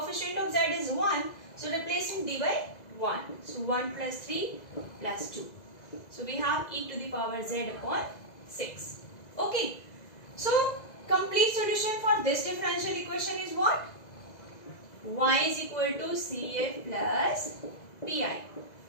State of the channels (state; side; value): late; right; 2.0 ms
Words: of z is 1. So replacing d by 1. So 1 plus 3 plus 2. So we have e to the power z upon 6. Okay. So complete solution for this differential equation is what? Y is equal to CF plus PI.